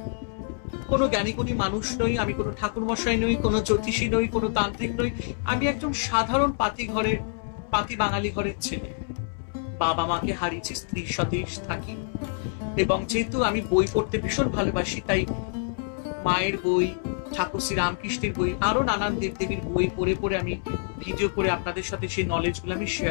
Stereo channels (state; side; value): silent; right; 60 dB below the other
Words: কোনো জ্ঞানীগুণী মানুষ নই, আমি কোনো ঠাকুরমশাই নই, কোনো জ্যোতিষী নই, কোনো তান্ত্রিক নই। আমি একজন সাধারণ পাতি বাঙালি ঘরের ছেলে। বাবা মাকে হারিয়েছি, স্ত্রীর সাথেই থাকি এবং যেহেতু আমি বই পড়তে ভীষণ ভালোবাসি, তাই মায়ের বই, ঠাকুর শ্রী রামকৃষ্ণের বই, আরো নানান দেবদেবীর বই পড়ে পড়ে আমি ভিডিও করে আপনাদের সাথে সেই নলেজগুলো আমি